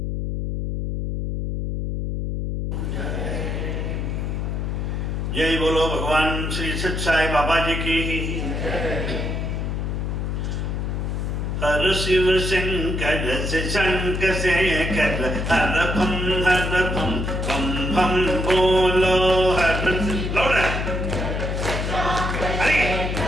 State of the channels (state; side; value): noise; left; hum, 2 dB below the sound